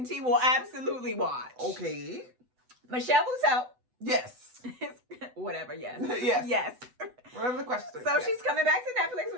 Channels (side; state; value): left; late; 8.0 ms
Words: T will absolutely watch. Okay. Michelle Buteau. Yes. Whatever, yes. Yes. Whatever the question is. So she's coming back to Netflix